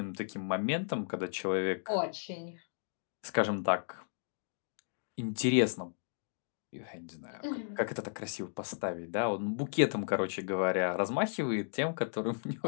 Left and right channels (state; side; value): silent; right; digital silence